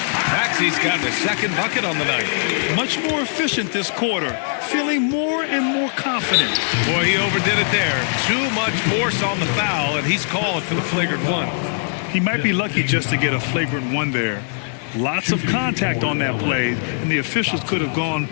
Maxey's got his second bucket on the night. Much more efficient this quarter. Feeling more and more confident. Boy, he overdid it there. Too much force on the foul, and he's called for the flagrant one. He might be lucky just to get a flagrant one there. Lots of contact on that play, and the officials could have gone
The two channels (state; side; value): silent; right; digital silence